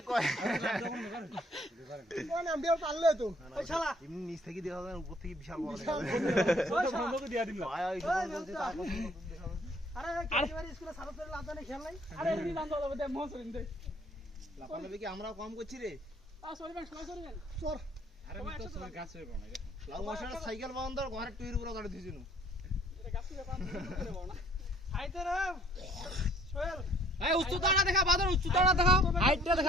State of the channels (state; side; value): normal; both; correlation 0.59